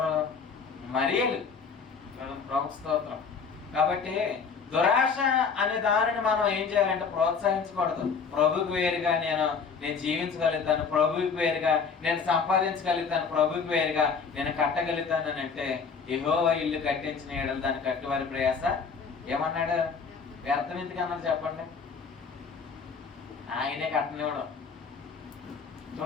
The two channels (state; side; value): quieter; right; 5.6 dB